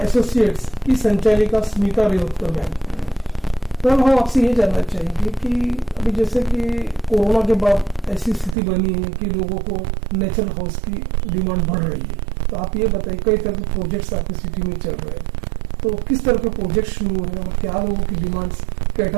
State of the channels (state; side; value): drops out; left; at 8.6 s